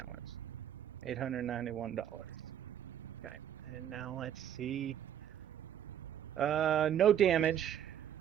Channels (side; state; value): left; quieter; 10.1 dB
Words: $891. Okay, and now let's see. No damage.